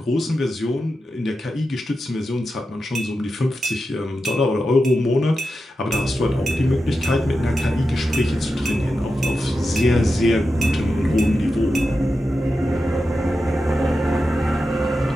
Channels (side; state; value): both; normal; correlation 0.90